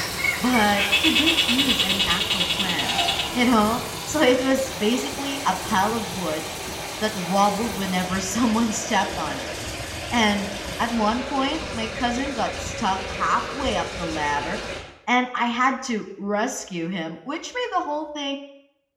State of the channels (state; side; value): identical; both; correlation 1.00